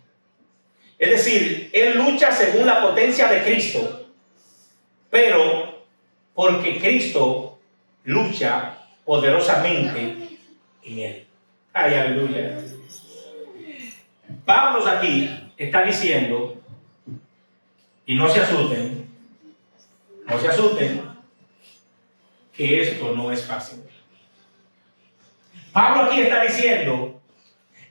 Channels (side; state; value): both; inverted; correlation -1.00